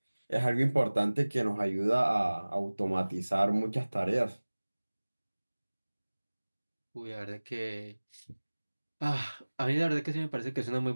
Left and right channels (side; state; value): both; inverted; correlation -1.00